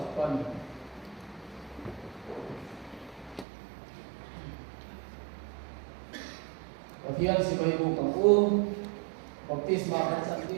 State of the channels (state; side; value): drops out; left; at 3.5 s